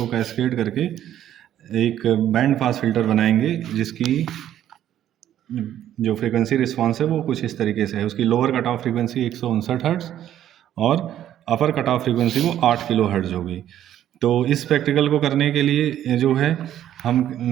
कैस्केड करके एक बैंड पास फिल्टर बनाएंगे, जिसकी जो फ्रीक्वेंसी रिस्पॉन्स है वो कुछ इस तरीके से है। उसकी lower cut off frequency 159 hertz और अपर कट ऑफ फ्रीक्वेंसी वो 8 किलो हर्ट्ज होगी। तो इस प्रैक्टिकल को करने के लिए जो है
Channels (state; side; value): quieter; left; 11.4 dB